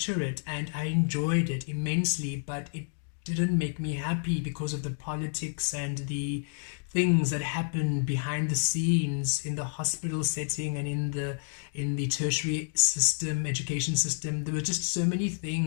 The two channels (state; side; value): silent; right; digital silence